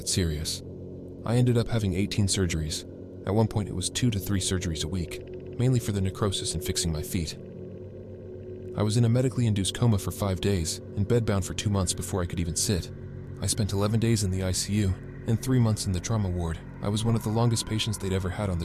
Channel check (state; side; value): identical; both; correlation 1.00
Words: serious. I ended up having 18 surgeries. At one point it was 2 to 3 surgeries a week, mainly for the necrosis and fixing my feet. I was in a medically induced coma for 5 days and bedbound for 2 months before I could even sit. I spent 11 days in the ICU and 3 months in the trauma ward. I was one of the longest patients they'd ever had on the